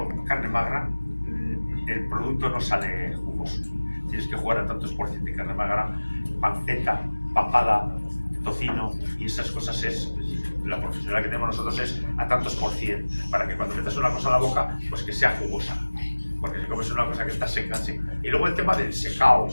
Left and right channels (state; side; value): inverted; both; correlation -1.00